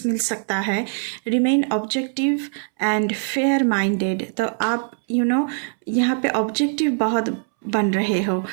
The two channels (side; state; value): left; silent; 64 dB below the other